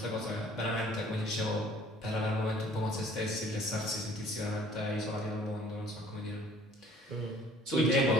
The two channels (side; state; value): both; normal; correlation 0.54